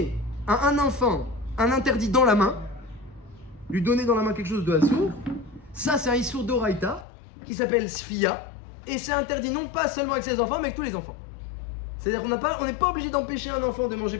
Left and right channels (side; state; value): right; drops out; at 7.1 s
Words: à un enfant un interdit dans la main, lui donner dans la main quelque chose de assourd, ça c'est un issour d'oraïta qui s'appelle sfia, et c'est interdit non pas seulement avec ses enfants, mais avec tous les enfants. C'est-à-dire qu'on n'est pas obligé d'empêcher un enfant de manger